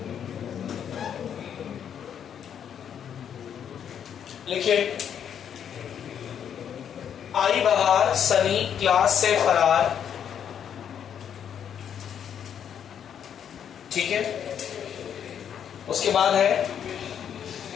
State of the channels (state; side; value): quieter; right; 8.7 dB